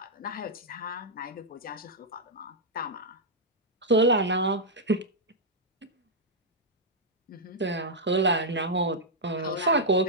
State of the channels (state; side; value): normal; both; correlation -0.06